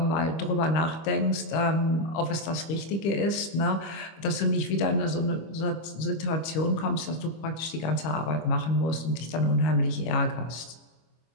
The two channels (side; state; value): right; late; 25 ms